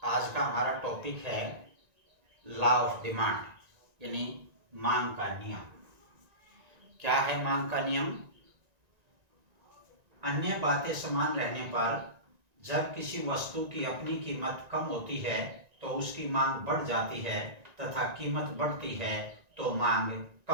आज का हमारा टॉपिक है लॉ ऑफ डिमांड यानी मांग का नियम। क्या है मांग का नियम? अन्य बातें समान रहने पर जब किसी वस्तु की अपनी कीमत कम होती है तो उसकी मांग बढ़ जाती है तथा कीमत बढ़ती है तो मांग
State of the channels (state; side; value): late; left; 1.9 ms